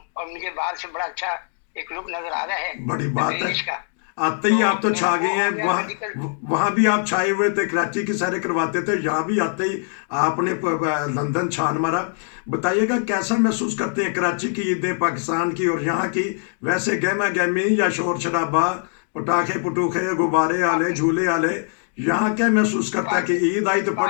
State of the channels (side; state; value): right; silent; digital silence